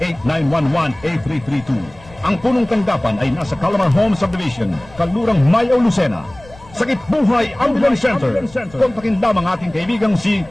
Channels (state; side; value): noise; left; rumble, 22 dB below the sound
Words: 0918-911-8332. Ang punong tanggapan ay nasa Calamar Home Subdivision, Kalurang Mayaw, Lucena. Sakip Buhay Ambulance Center. Kontakin lamang ating kaibigang si